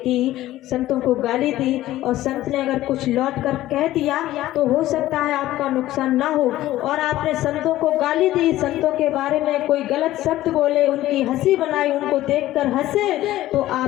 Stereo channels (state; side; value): quieter; right; 15.0 dB